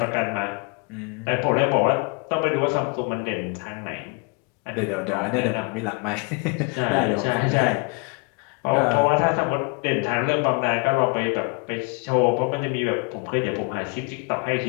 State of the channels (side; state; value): right; quieter; 34.1 dB